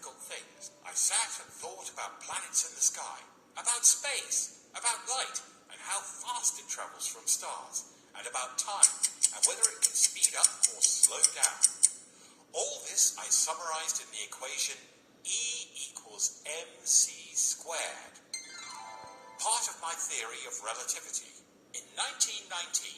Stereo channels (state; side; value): identical; both; correlation 1.00